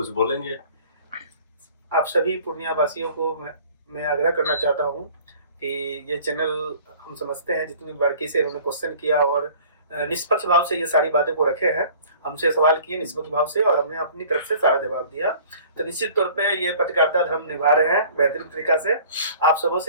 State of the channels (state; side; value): inverted; both; correlation -0.49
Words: बोलेंगे? आप सभी पूर्णिया वासियों को मैं आग्रह करना चाहता हूं कि ये चैनल, हम समझते हैं जितनी बारीकी से उन्होंने क्वेश्चन किया और निष्पक्ष भाव से ये सारी बातें को रखे हैं, हमसे सवाल किए निष्पक्ष भाव से और हमने अपनी तरफ से सारा जवाब दिया। तो निश्चित तौर पे ये पत्रकारिता धर्म निभा रहे हैं बेहतरीन तरीका से। आप सबों